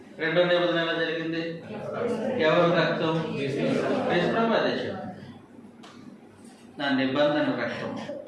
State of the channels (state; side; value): identical; both; correlation 1.00